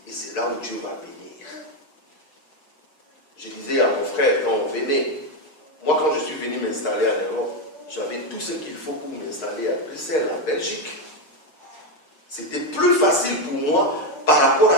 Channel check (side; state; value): right; late; 6.6 ms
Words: Et c'est là où Dieu va bénir. Je disais à mon frère, quand on venait, moi quand je suis venu m'installer à l'Europe, j'avais tout ce qu'il faut pour m'installer à Bruxelles, en Belgique. C'était plus facile pour moi par rapport à